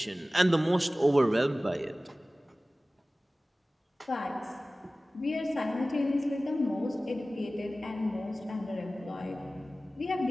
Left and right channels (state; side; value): normal; both; correlation 0.97